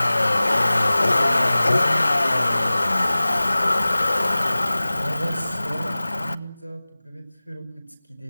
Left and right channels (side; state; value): both; inverted; correlation -0.98